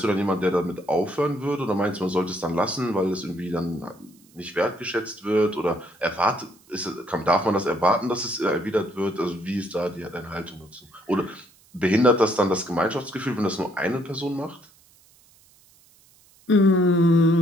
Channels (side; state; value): right; noise; hiss, 29 dB below the sound